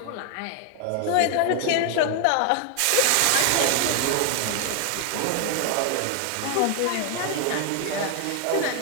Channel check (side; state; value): both; different; correlation 0.00